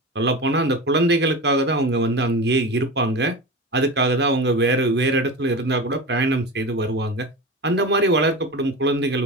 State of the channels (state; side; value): normal; both; correlation 0.27